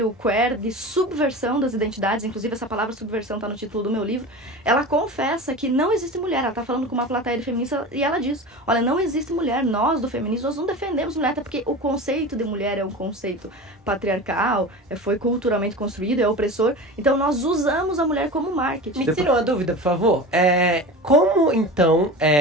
queer de subversão das identidades, inclusive essa palavra subversão está no título do meu livro, ela confessa que não existe mulher. Ela está falando com uma plateia de feminista e ela diz, olha, não existe mulher, nós do feminismo, nós não defendemos mulher, até porque o conceito de mulher é um conceito patriarcal, foi culturalmente construído, é opressor, então nós usamos a mulher como marketing. Me tira uma dúvida, por favor. Como, então,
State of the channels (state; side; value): normal; both; correlation 0.31